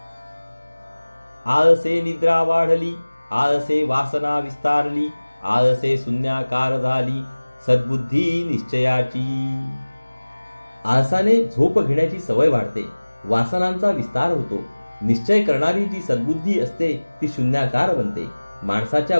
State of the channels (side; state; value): both; inverted; correlation -1.00